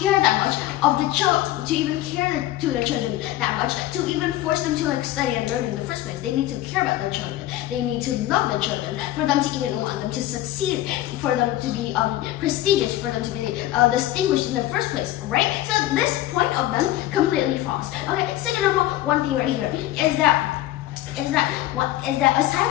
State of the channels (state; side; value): quieter; right; 14.8 dB